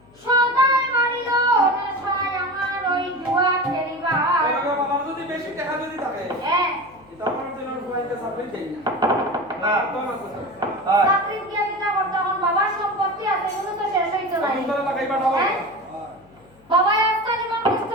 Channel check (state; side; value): noise; left; hum, 28 dB below the sound